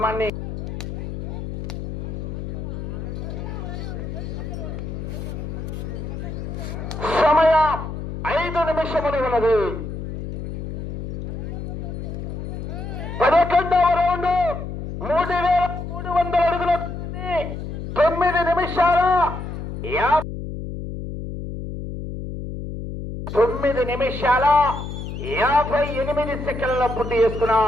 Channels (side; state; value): left; noise; hum, 6 dB below the sound